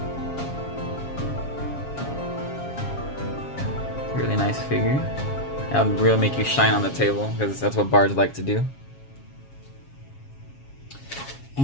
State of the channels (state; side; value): late; right; 7.3 ms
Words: Really nice figure. That'll really make you shine on the table, because that's what bards like to do.